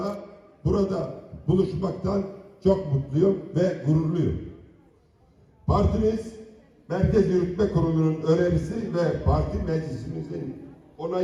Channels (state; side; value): identical; both; correlation 1.00